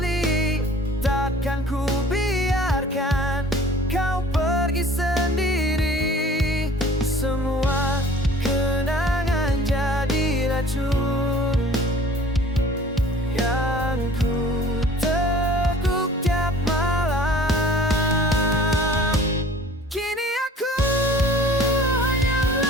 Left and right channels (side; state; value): both; normal; correlation 0.48